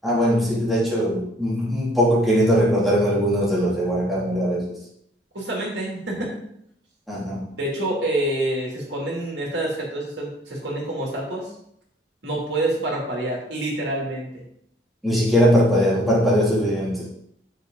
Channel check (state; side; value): normal; both; correlation 0.57